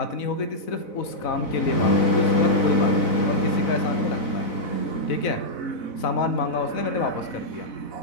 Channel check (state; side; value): late; right; 4.0 ms